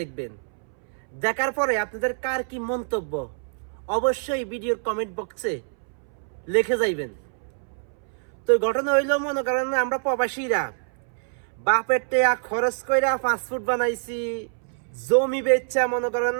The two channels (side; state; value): left; silent; 61 dB below the other